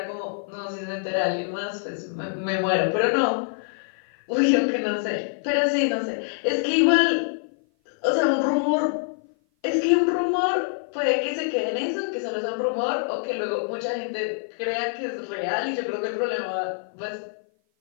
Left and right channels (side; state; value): right; silent; 55 dB below the other